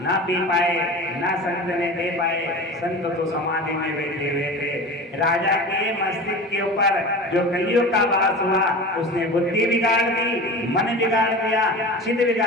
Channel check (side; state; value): both; normal; correlation 0.33